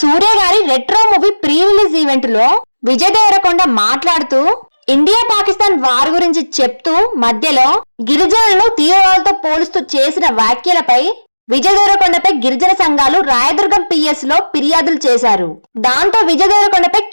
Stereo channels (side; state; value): both; inverted; correlation -1.00